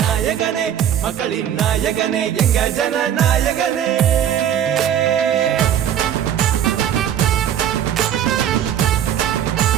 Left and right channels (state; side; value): quieter; left; 9.9 dB